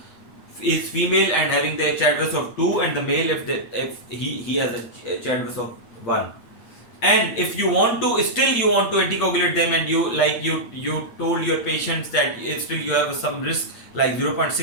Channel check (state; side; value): late; right; 8.8 ms